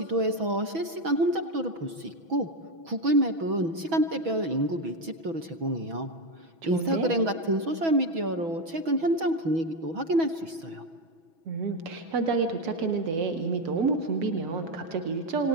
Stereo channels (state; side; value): late; left; 6.1 ms